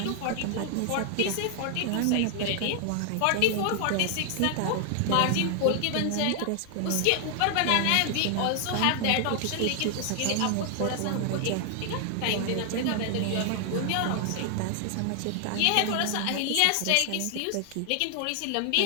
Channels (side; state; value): both; different; correlation 0.00